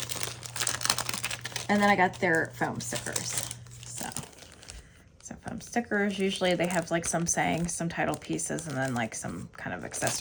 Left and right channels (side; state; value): both; identical; correlation 1.00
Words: And then I got their foam stickers. So foam stickers, usually they have like some sayings, some title pieces, and then like some kind of